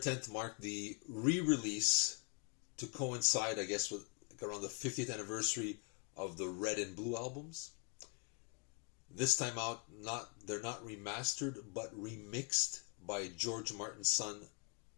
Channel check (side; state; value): right; quieter; 34.2 dB